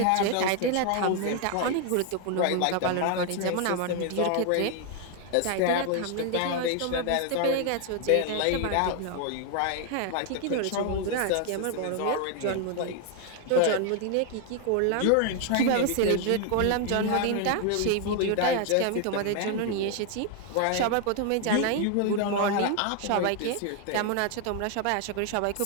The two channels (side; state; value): both; different; correlation 0.00